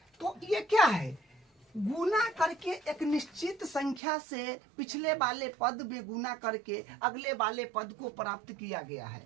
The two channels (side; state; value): left; drops out; at 4.0 s